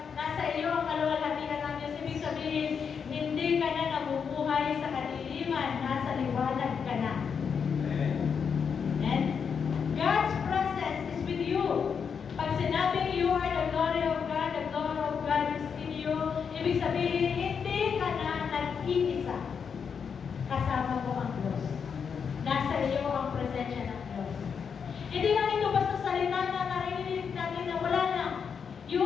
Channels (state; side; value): quieter; right; 6.6 dB